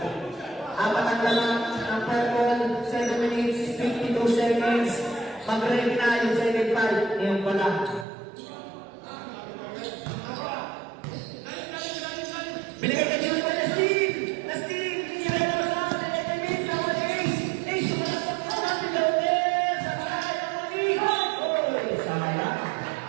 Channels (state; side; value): drops out; left; at 8.1 s